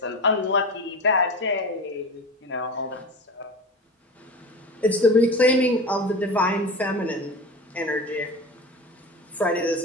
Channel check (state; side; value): normal; both; correlation 0.30